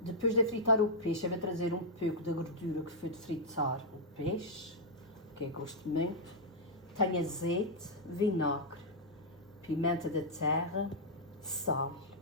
Depois de fritar o peixe, eu vou trazer um pouco da gordura que foi de fritar o peixe, que eu gosto muito. Tenho azeite, vinagre, pimenta da terra, sal.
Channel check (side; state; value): both; normal; correlation -0.06